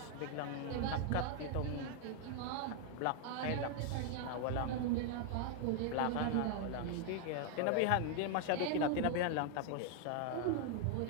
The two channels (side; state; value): both; different; correlation 0.00